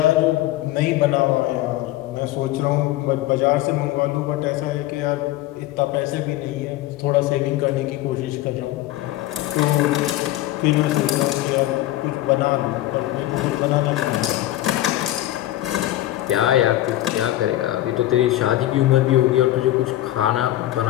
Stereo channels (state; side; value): quieter; right; 15.1 dB